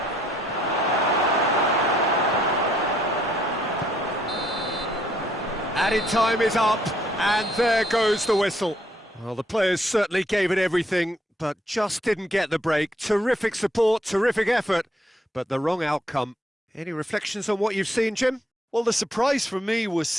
Added time is up, and there goes the whistle. Well, the players certainly gave it everything, but just didn't get the break. Terrific support, terrific effort, but the wrong outcome. Any reflections on what you've seen, Jim? Well, the surprise for me was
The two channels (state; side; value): normal; both; correlation 0.69